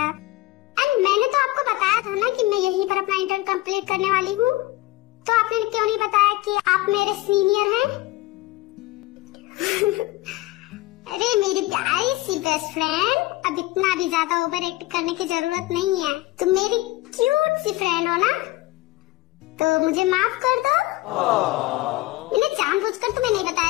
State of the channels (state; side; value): quieter; right; 18.9 dB